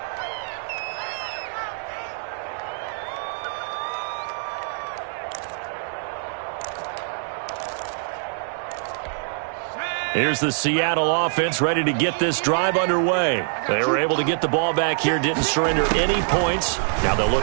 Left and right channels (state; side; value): silent; left; digital silence